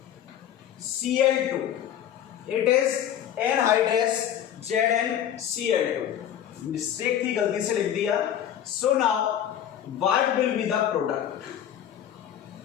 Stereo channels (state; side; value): quieter; right; 10.2 dB